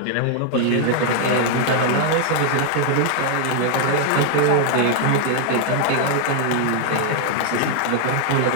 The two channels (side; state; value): both; different; correlation 0.00